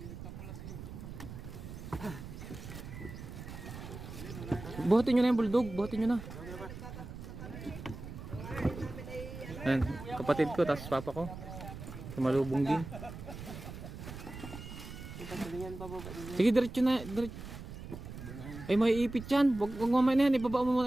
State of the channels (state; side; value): noise; right; rumble, 11 dB below the sound